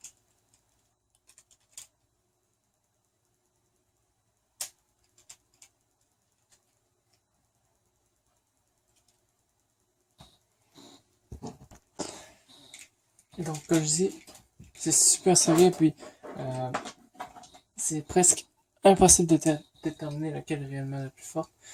Donc, comme je dis, c'est super serré, puis c'est presque impossible de déterminer laquelle est réellement la plus forte.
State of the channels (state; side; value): identical; both; correlation 1.00